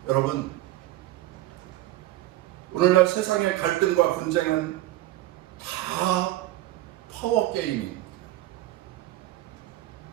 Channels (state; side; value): quieter; left; 15.9 dB